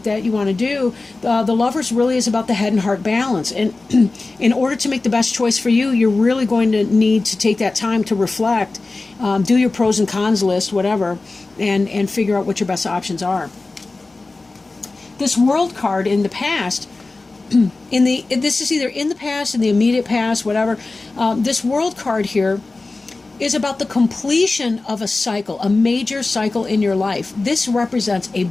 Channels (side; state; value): right; quieter; 3.4 dB